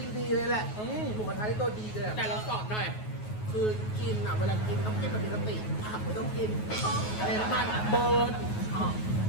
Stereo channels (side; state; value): right; late; 9.4 ms